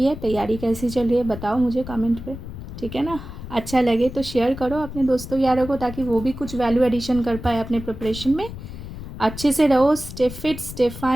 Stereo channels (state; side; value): noise; left; rumble, 11 dB below the sound